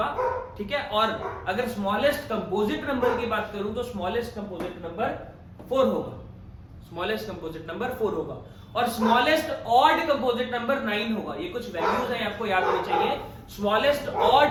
ठीक है। और अगर स्मॉलेस्ट कंपोजिट नंबर की बात करूं तो स्मॉलेस्ट कंपोजिट नंबर 4 होगा, स्मॉलेस्ट कंपोजिट नंबर 4 होगा, और स्मॉलेस्ट ऑड कंपोजिट नंबर 9 होगा। ये कुछ वैल्यूज हैं, आपको याद होनी चाहिए। स्मॉलेस्ट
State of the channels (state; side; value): identical; both; correlation 1.00